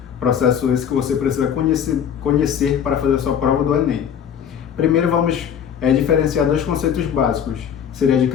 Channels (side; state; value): right; quieter; 8.4 dB